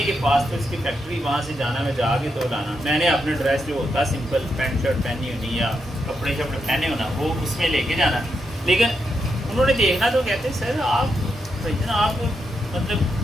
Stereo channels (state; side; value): normal; both; correlation 0.83